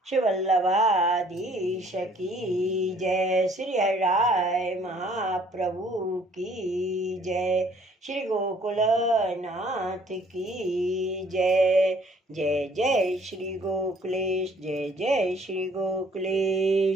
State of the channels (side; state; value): both; normal; correlation 0.59